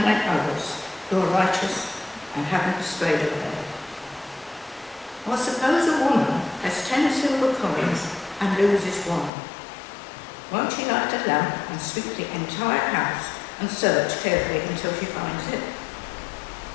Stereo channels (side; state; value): right; drops out; at 9.3 s